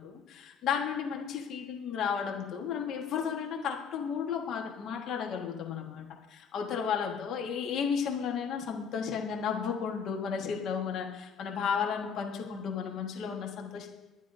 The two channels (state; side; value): quieter; right; 6.6 dB